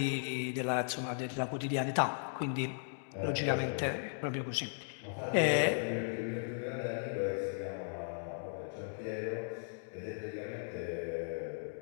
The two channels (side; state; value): right; silent; digital silence